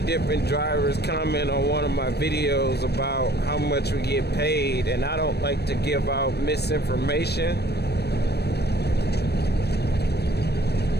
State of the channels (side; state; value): right; late; 0.47 ms